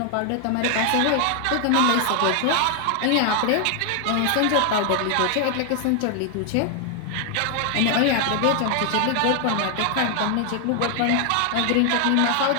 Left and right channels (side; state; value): both; different; correlation 0.00